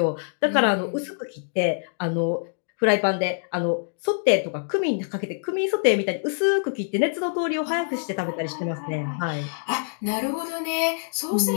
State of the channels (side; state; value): right; silent; digital silence